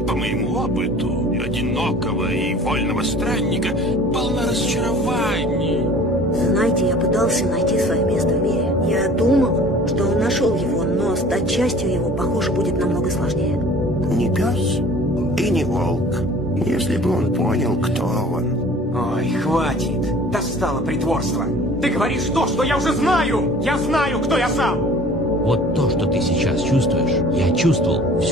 по моему опыту, одинокого и вольного странника, полна разочарований. Знаете, я пытался найти свое место в мире. Я думал, что нашел его, но стать частью его, похоже, будет намного сложнее. Не пес и не волк. Если бы он понял, кто он. Ой, хватит. Достало притворство. Ты говоришь то, что я уже знаю. Я знаю, кто я сам. Вот то, что ты сейчас чувствуешь, я чувствовал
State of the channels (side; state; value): both; normal; correlation 0.47